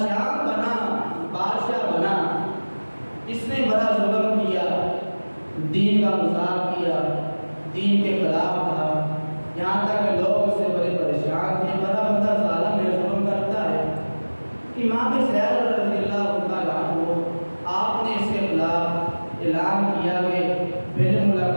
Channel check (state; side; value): inverted; both; correlation -1.00